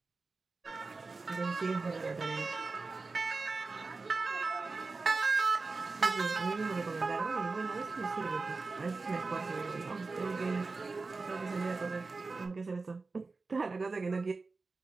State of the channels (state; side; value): quieter; left; 3.9 dB